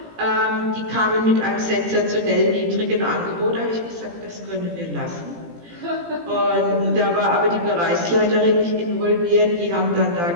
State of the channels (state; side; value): late; left; 18 ms